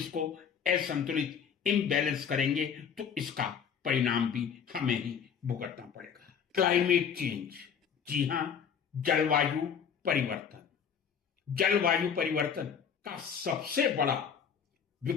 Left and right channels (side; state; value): right; quieter; 7.2 dB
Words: असंतुलित, इम्बैलेंस करेंगे तो इसका परिणाम भी हमें ही भुगतना पड़ेगा। क्लाइमेट चेंज, जी हां, जलवायु परिवर्तन। जलवायु परिवर्तन का सबसे बड़ा